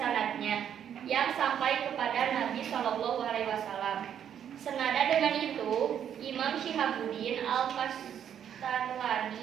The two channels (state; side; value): quieter; left; 9.1 dB